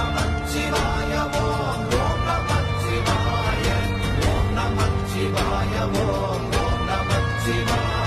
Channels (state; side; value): identical; both; correlation 1.00